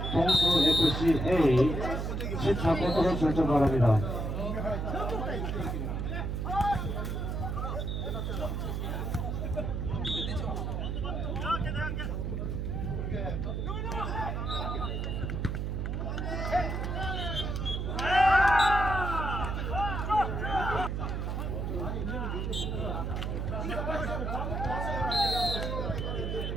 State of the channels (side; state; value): right; noise; hum, 2 dB below the sound